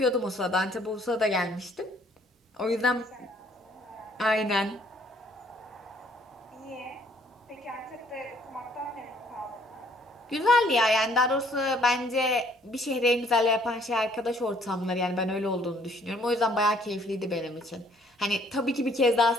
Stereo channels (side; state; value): both; normal; correlation 0.62